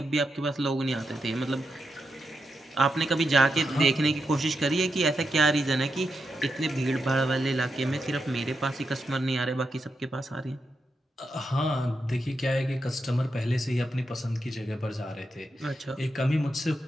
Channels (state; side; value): normal; both; correlation 0.86